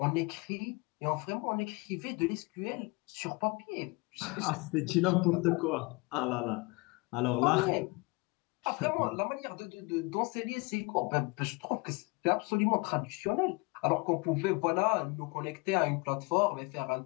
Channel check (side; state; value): right; quieter; 27.2 dB